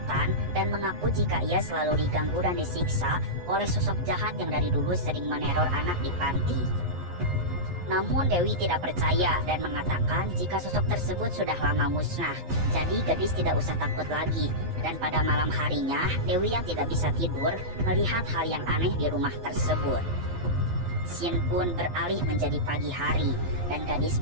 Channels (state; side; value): late; left; 11 ms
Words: dan mengaku jika ia selalu diganggu dan disiksa oleh sosok jahat yang dari dulu sering meneror anak di panti. Namun Dewi tidak percaya dan mengatakan jika sosok tersebut sudah lama musnah, jadi Gadis tidak usah takut lagi. Dan pada malam harinya, Dewi yang tidak bisa tidur melihat hal yang aneh di rumah tersebut. Scene pun beralih menjadi pagi hari dan Gadis